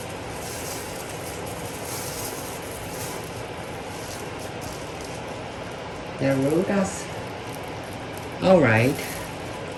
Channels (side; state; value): both; identical; correlation 1.00